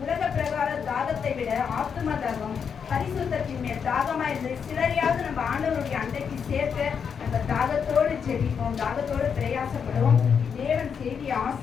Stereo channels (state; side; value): quieter; right; 6.8 dB